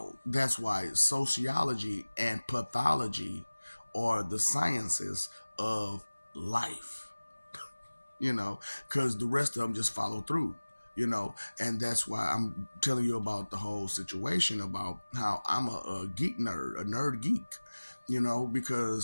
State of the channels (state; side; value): inverted; both; correlation -1.00